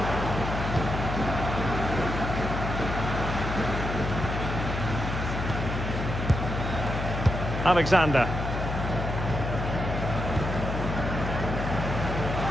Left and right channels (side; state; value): left; noise; hum, 3 dB below the sound